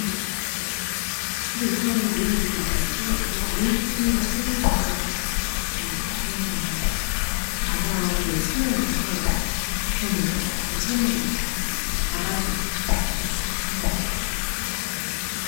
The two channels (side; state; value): right; silent; 62 dB below the other